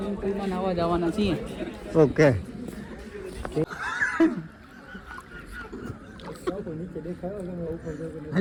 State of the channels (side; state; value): both; identical; correlation 1.00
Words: પુલમાં નાવા જવાના છીએ. ઓકે.